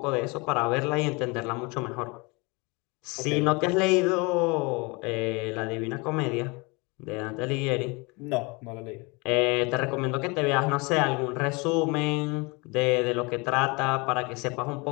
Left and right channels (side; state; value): right; quieter; 27.8 dB